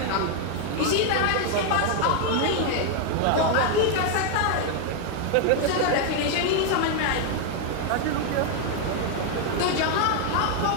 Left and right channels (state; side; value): different; both; correlation 0.00